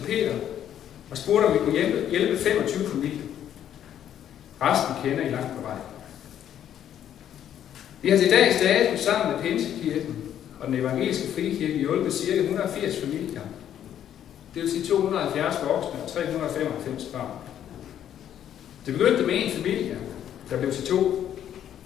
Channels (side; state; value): right; quieter; 10.3 dB